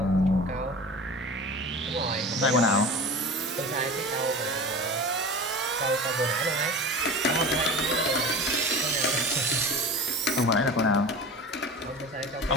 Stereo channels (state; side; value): normal; both; correlation 0.34